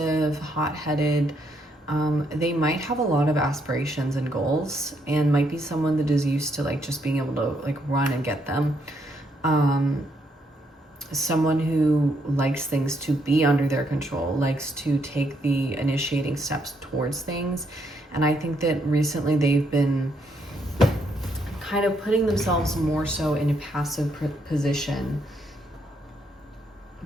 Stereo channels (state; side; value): normal; both; correlation 0.74